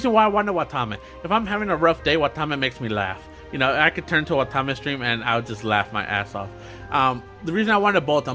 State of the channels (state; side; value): identical; both; correlation 1.00